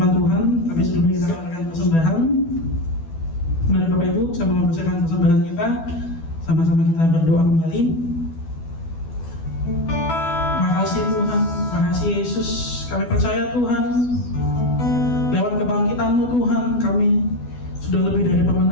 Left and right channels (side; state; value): right; late; 12 ms